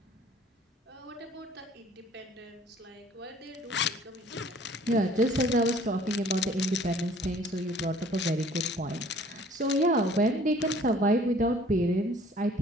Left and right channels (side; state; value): both; normal; correlation 0.54